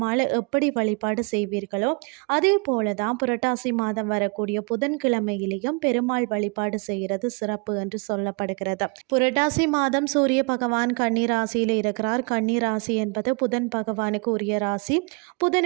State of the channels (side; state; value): left; quieter; 33.7 dB